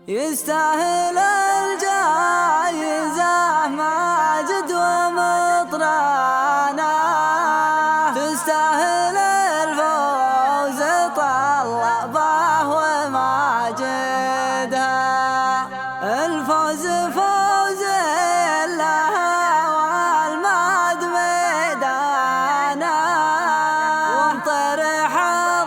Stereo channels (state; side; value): identical; both; correlation 1.00